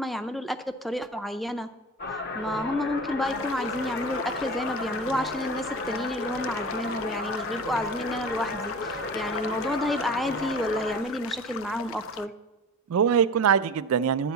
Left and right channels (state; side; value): normal; both; correlation 0.32